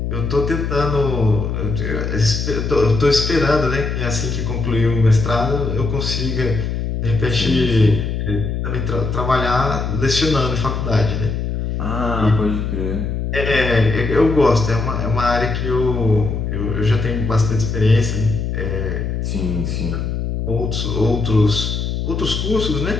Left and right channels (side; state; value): left; noise; hum, 2 dB below the sound